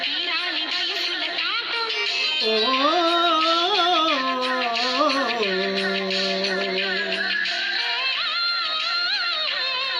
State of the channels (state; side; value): identical; both; correlation 1.00